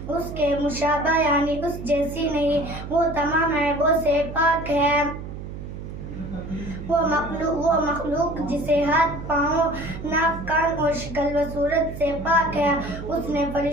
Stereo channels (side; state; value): right; noise; hum, 10 dB below the sound